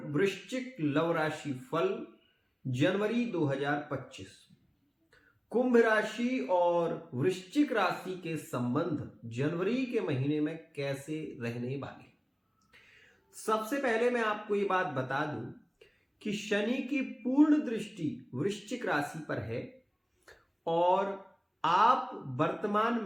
वृश्चिक लव राशि फल जनवरी 2025। कुंभ राशि और वृश्चिक राशि के संबंध जनवरी के महीने में कैसे रहने वाले। सबसे पहले मैं आपको ये बात बता दूं कि शनि की पूर्ण दृष्टि वृश्चिक राशि पर है और आप वर्तमान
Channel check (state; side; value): identical; both; correlation 1.00